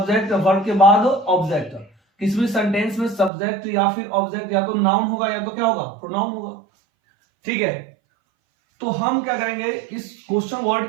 वर्ब के बाद ऑब्जेक्ट। किसी भी सेंटेंस में सब्जेक्ट या फिर ऑब्जेक्ट या तो नाउन होगा या तो क्या होगा, प्रोनाउन होगा, ठीक है। तो हम क्या करेंगे, इस क्वेश्चन वर्ड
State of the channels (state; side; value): drops out; left; at 3.3 s